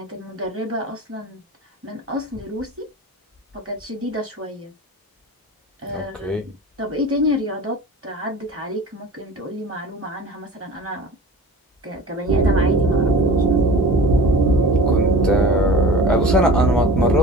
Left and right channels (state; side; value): normal; both; correlation 0.39